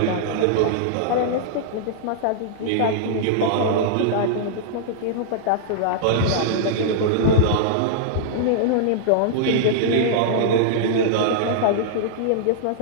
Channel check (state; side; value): different; both; correlation -0.02